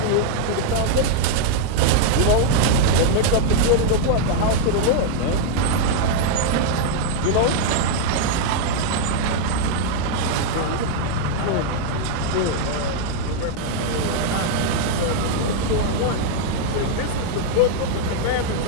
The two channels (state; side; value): different; both; correlation -0.01